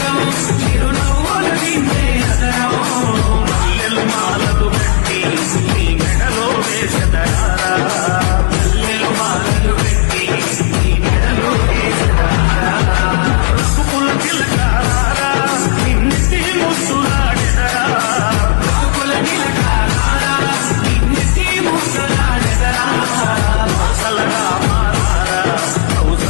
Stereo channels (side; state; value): right; silent; 63 dB below the other